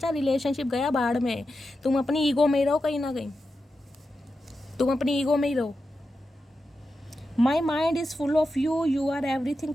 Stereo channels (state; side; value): normal; both; correlation 0.90